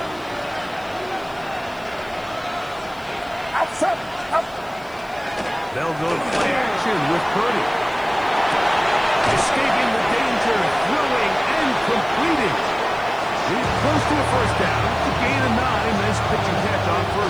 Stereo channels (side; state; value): left; noise; hiss, 27 dB below the sound